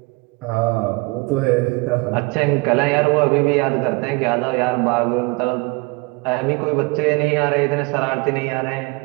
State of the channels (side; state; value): left; quieter; 27.5 dB